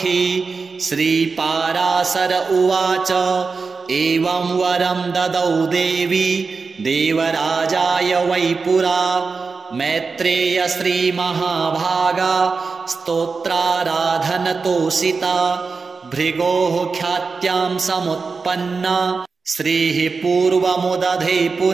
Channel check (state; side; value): quieter; left; 4.6 dB